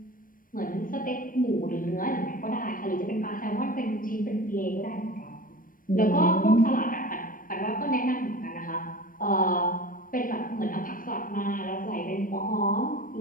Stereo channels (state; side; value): late; right; 0.40 ms